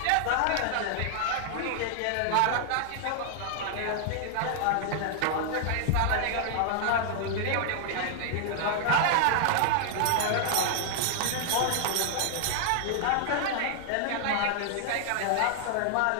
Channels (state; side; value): different; both; correlation -0.01